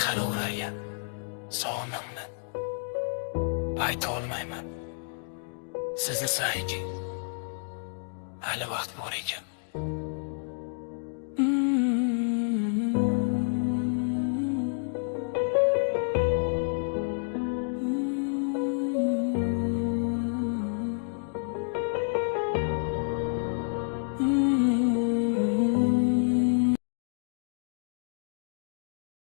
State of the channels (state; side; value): silent; right; digital silence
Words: hali ularga sog'inamni ayta olmayman. Sizni sayki hali vaqt bor ekan.